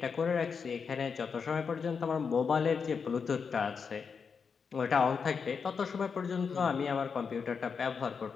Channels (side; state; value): right; quieter; 5.9 dB